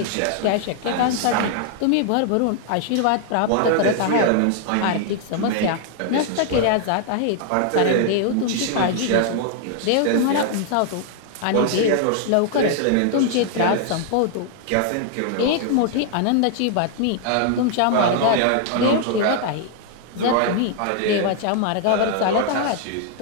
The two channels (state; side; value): different; both; correlation 0.00